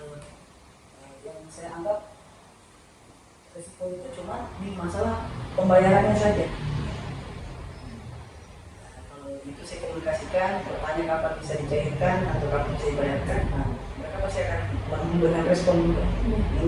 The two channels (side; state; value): both; identical; correlation 1.00